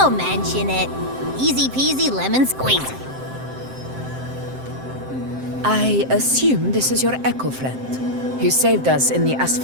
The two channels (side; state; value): left; late; 7.7 ms